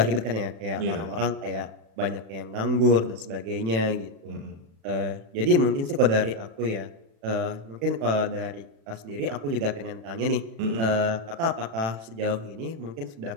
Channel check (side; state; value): left; late; 36 ms